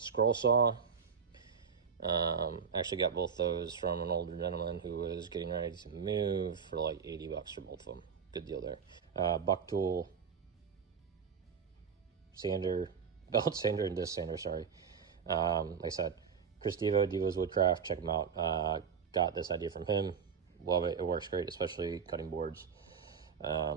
saw. Actually got both those from an older gentleman who was getting ready to move for like 80 bucks for both of them. Good deal there. Buck tool sander, belt sander and disc sander, sorry. Like I said, Chris Devo's Woodcraft, check him out. Got this idea from him. Love it. It works great, especially cutting boards.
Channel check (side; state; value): left; quieter; 6.6 dB